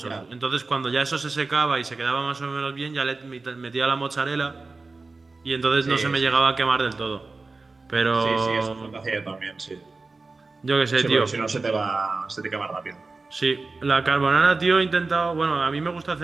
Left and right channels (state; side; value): quieter; left; 3.8 dB